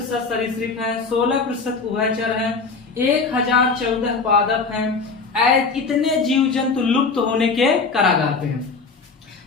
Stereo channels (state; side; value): quieter; right; 4.5 dB